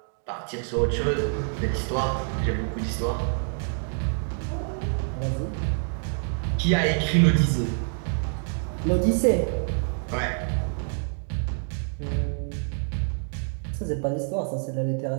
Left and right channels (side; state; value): left; silent; 60 dB below the other